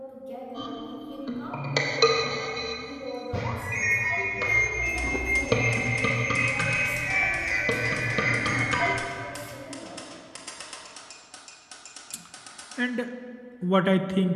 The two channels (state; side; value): identical; both; correlation 1.00